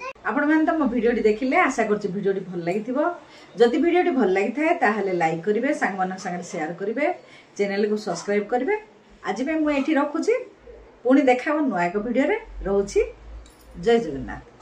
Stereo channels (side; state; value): both; identical; correlation 1.00